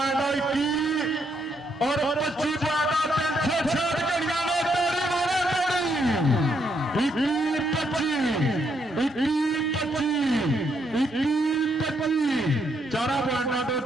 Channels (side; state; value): both; normal; correlation 0.75